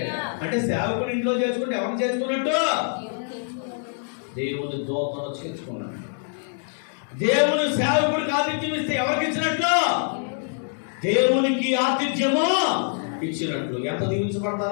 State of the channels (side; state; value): right; silent; 61 dB below the other